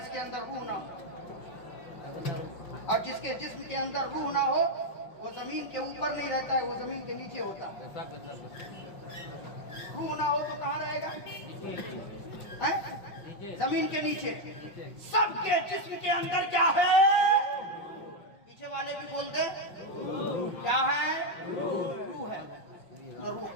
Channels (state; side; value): late; right; 5.5 ms